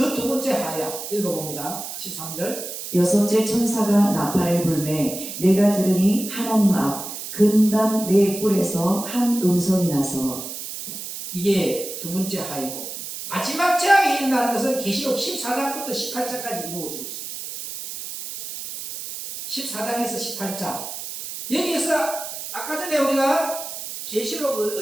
두 번째 하야. 읽어봅니다. 13절. 여섯째 천사가 나팔을 불매 내가 들으니 하나님 앞 근단 네 뿔에서 한 음성이 나서. 이게 두 번째 하이고, 마지막 재앙이 일어나는 것은 계시록 14장부터 18장까지 이루어지고 있습니다. 14장에서 18장. 여기에서 아까 전에 우리가 계시록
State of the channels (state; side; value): noise; right; hiss, 8 dB below the sound